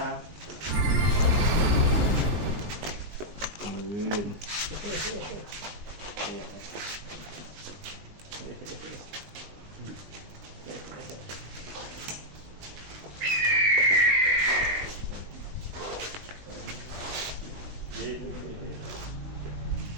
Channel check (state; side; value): late; left; 20 ms